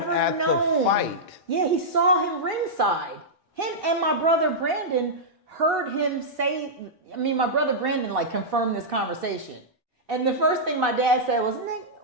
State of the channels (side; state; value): both; normal; correlation -0.10